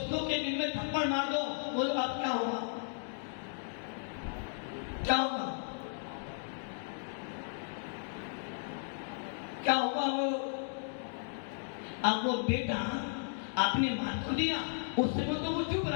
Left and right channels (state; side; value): silent; right; digital silence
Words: के दिल में थप्पड़ मार दो, बोलो अब क्या होगा? क्या होगा? क्या होगा? अब वो बेटा आपने मार को दिया, उस समय तो वो चुप